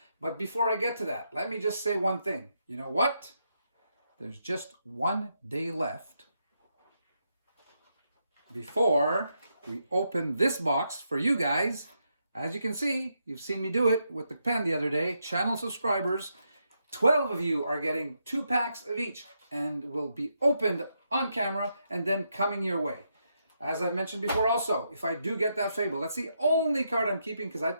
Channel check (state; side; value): inverted; both; correlation -0.81